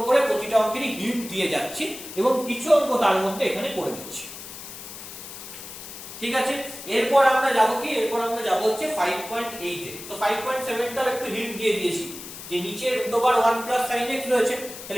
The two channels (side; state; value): left; noise; hiss, 12 dB below the sound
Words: করে প্রতিটা অঙ্কেরই হিন্ট দিয়ে যাচ্ছি এবং কিছু অঙ্ক তার মধ্যে এখানে করে দিচ্ছি। ঠিক আছে, এরপর আমরা যাবো কি, এরপর আমরা যাবো হচ্ছে 5.8 এ। তো 5.7 টাও একটু হিন্ট দিয়ে দিয়েছি, যে নিচে √1 + sin x রয়েছে,